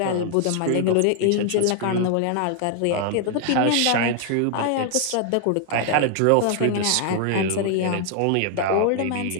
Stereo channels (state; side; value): different; both; correlation 0.00